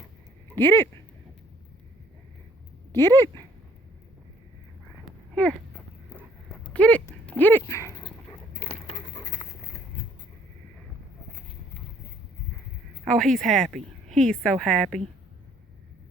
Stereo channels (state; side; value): normal; both; correlation 0.61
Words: Get it. Get it. Here. Get it. Get it. Oh, he's happy. He's so happy.